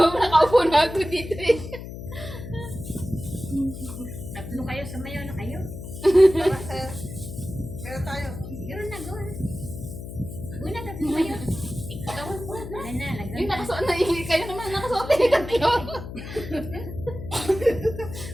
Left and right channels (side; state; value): left; noise; hum, 10 dB below the sound